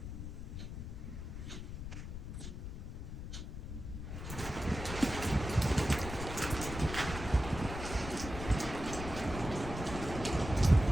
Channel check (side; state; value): left; noise; rumble, 7 dB below the sound